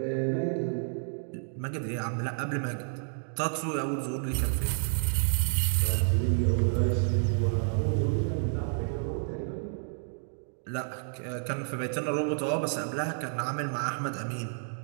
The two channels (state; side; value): silent; left; digital silence